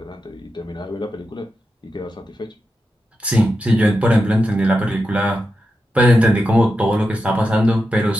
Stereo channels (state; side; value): normal; both; correlation 0.89